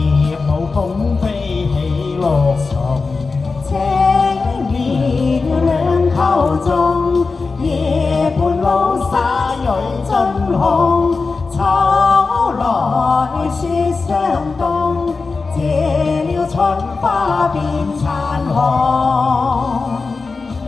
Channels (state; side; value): quieter; right; 4.2 dB